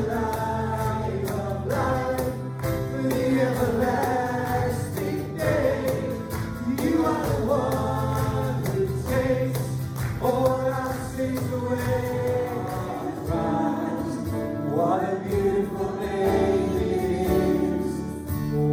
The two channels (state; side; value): identical; both; correlation 1.00